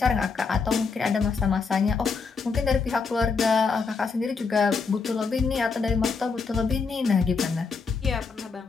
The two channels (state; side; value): quieter; right; 4.9 dB